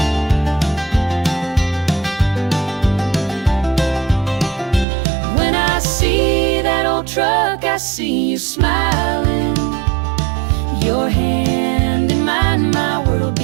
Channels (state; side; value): drops out; left; at 4.9 s